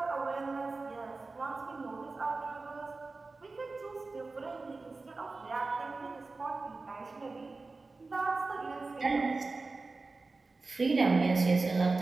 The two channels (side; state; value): left; quieter; 3.7 dB